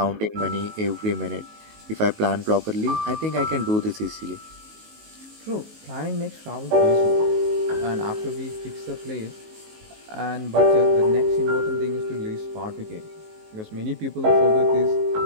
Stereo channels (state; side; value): late; left; 19 ms